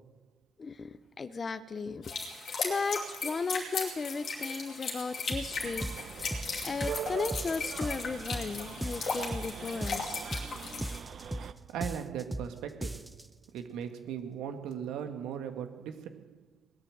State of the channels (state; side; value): normal; both; correlation 0.81